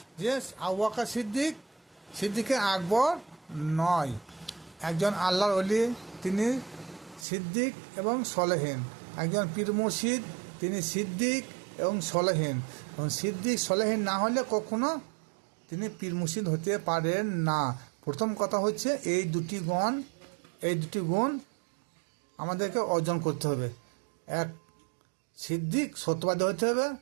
যে আবু বকর সিদ্দিকে আকবর নয়, একজন আল্লাহর ওলি, তিনি সিদ্দিক এবং সলেহীন। একজন পীর মুর্শিদ, তিনি সিদ্দিক এবং সলেহীন। এবং সিদ্দিক সলেহীন না হলে কখনো তিনি পীর মুর্শিদ হতে পারেন না। প্রথম কথা হচ্ছে এই দুটি গুণ আমাদেরকে অর্জন করতে হবে। এক, সিদ্দিক সত্যবাদী হতে হবে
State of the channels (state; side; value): drops out; left; at 7.2 s